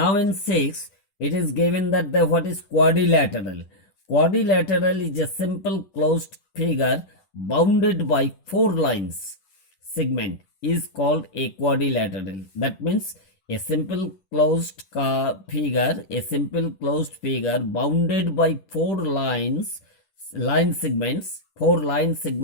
6, it is given that what is quadrilateral. Quadrilateral is a simple closed figure bounded by four lines. Segment is called a quadrilateral. That means a simple closed figure bounded by four line segments. Four line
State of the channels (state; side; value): late; right; 10 ms